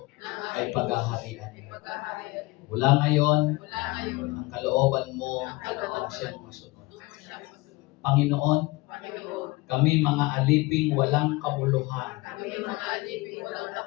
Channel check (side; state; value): right; quieter; 22.6 dB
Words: ay paghaharian. Mula ngayon, ang kalooban mo ang siyang masunod. Panginoon, kami mga aliping walang kabuluhan,